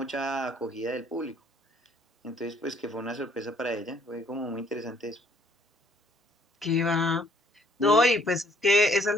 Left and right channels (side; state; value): both; normal; correlation 0.62